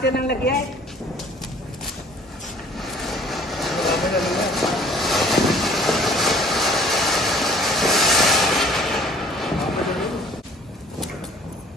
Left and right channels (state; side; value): normal; both; correlation 0.52